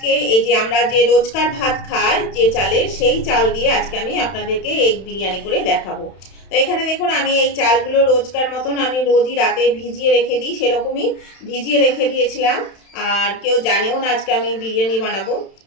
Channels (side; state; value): right; late; 31 ms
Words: এই যে আমরা যে রোজকার ভাত খাই যে চালের, সেই চাল দিয়ে আজকে আমি আপনাদেরকে এগ বিরিয়ানি করে দেখাবো। তো এখানে দেখুন, আমি এই চালগুলো রোজকার মতন আমি রোজই রাতে ভিজিয়ে রেখে দিই, সেরকমই ভিজিয়ে রেখে দিয়েছিলাম। আর কেউ জানেও না আজকে আমি বিরিয়ানি বানাবো,